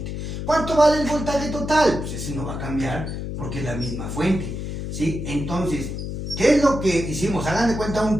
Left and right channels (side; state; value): left; noise; hum, 5 dB below the sound